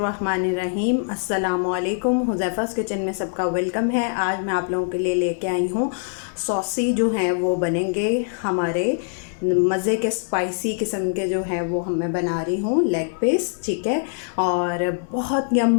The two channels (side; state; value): right; silent; digital silence